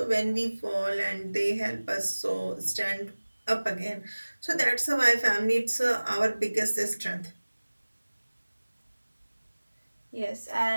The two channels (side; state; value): both; inverted; correlation -1.00